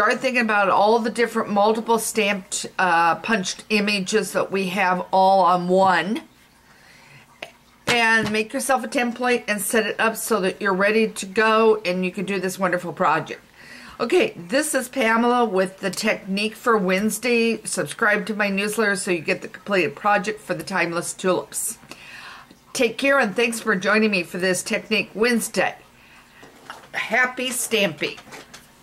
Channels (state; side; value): identical; both; correlation 1.00